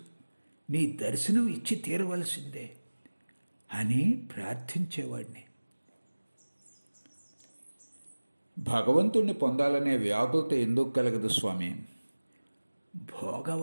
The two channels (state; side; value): inverted; both; correlation -1.00